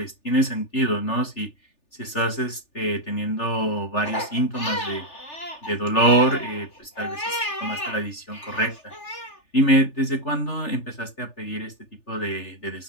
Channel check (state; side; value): late; right; 3.4 ms